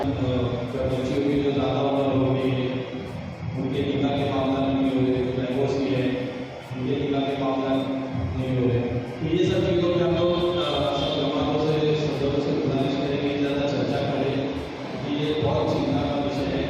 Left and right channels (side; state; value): both; identical; correlation 1.00